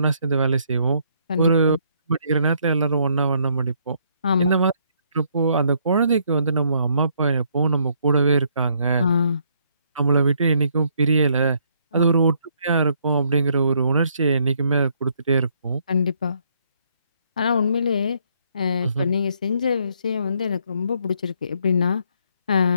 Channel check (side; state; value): both; inverted; correlation -0.70